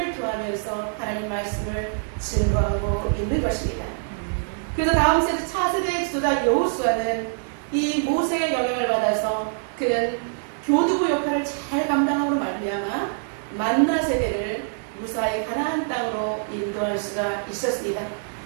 토하면서 하나님 말씀을 증거하고 있는 것입니다. 그래서 다음 세대 차세대의 지도자 여호수아는 이 모세의 영향을 받아서 그는 교두보 역할을 잘 감당함으로 말미암아 만나 세대를 무사히 가나안 땅으로 인도할 수가 있었습니다.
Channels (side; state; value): left; silent; 62 dB below the other